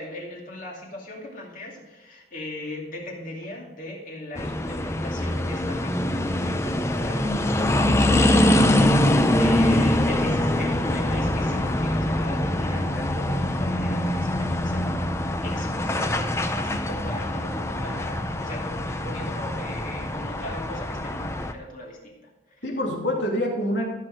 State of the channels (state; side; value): normal; both; correlation 0.75